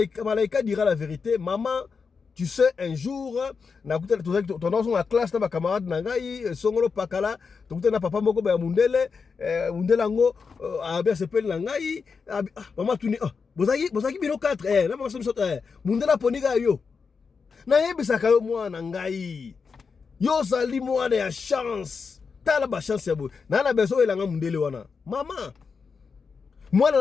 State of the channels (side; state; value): right; quieter; 5.3 dB